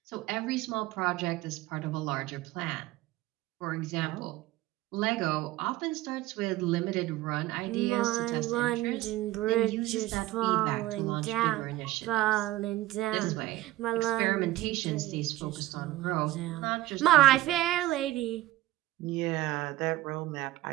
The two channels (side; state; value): left; quieter; 16.7 dB